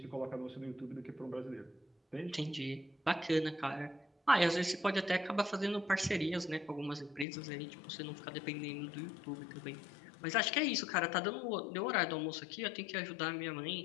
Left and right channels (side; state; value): right; drops out; at 7.2 s